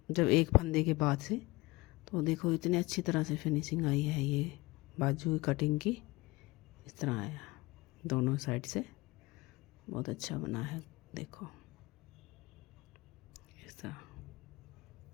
जब एक फंदे के बाद से, तो देखो इतनी अच्छी तरह से फिनिशिंग आई है। ये बाजू कटिंग की इस तरह आया, दोनों साइड से बहुत अच्छा बना है। देखो इस तरह।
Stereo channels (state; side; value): quieter; right; 22.1 dB